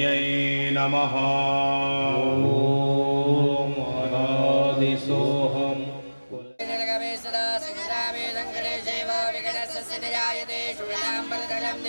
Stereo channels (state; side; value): inverted; both; correlation -1.00